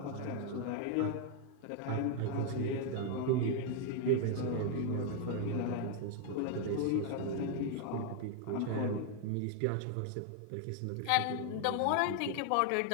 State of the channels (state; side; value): different; both; correlation 0.00